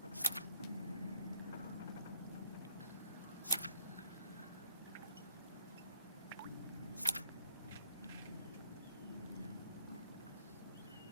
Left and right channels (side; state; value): both; inverted; correlation -0.59